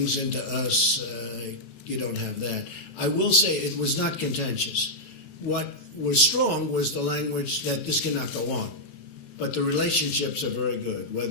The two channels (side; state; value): right; late; 35 ms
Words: into us, you don't have that. I will say it was not contentious. What was strong was the language that this cannot go on. But the relationships are very good,